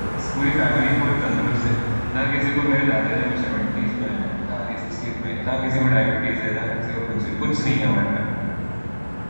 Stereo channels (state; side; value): inverted; both; correlation -1.00